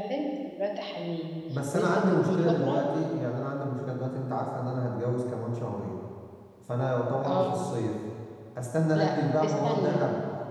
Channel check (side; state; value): both; identical; correlation 1.00